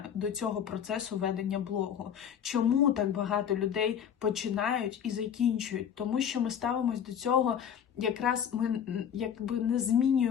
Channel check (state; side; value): quieter; right; 8.5 dB